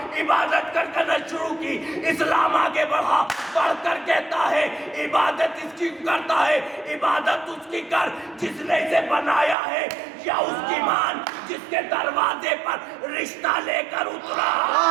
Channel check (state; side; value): drops out; left; at 9.6 s